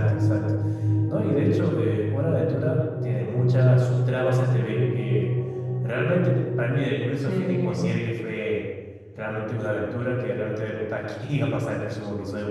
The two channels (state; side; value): identical; both; correlation 1.00